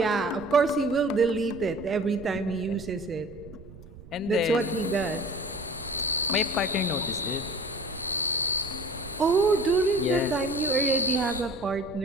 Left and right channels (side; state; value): right; noise; rumble, 18 dB below the sound